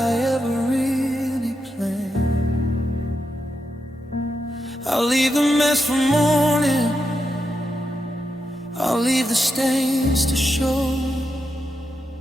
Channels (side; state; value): both; normal; correlation 0.85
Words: ever really planned. I'll leave the mess for morning, I'll leave the stains to show